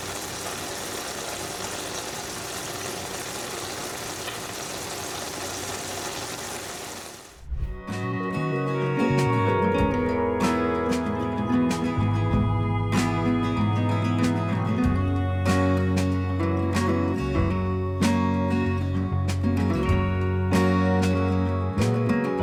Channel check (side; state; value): both; identical; correlation 1.00